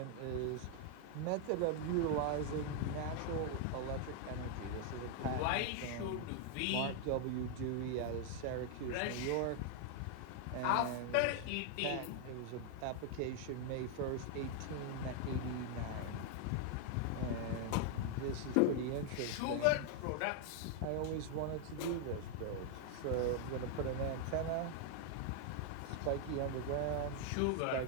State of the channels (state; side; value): different; both; correlation 0.00